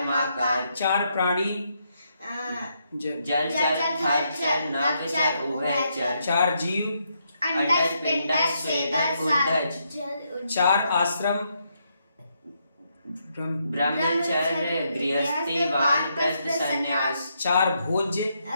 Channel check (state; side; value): inverted; both; correlation -0.78